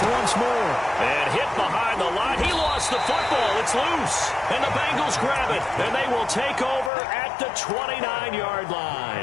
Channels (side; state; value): right; drops out; at 6.9 s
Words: once more. And hit behind the line. He lost the football. It's loose. And the Bengals grab it. And they will take over at the 29-yard